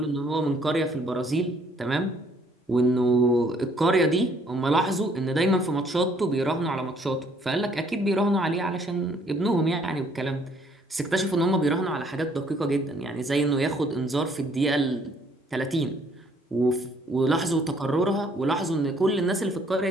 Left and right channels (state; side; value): normal; both; correlation 0.63